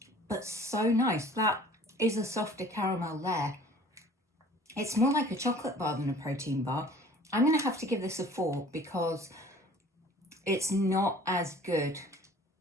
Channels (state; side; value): normal; both; correlation 0.49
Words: but so nice. That is a softer caramel layer. It's more like a chocolate bar than a protein bar. I'm going to have to give this a 4 because it's not as good